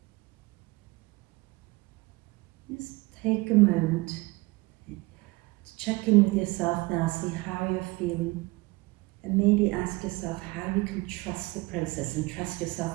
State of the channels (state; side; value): quieter; left; 23.2 dB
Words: Just take a moment to check in with yourself now, see how you're feeling, and maybe ask yourself how you can trust the process and trust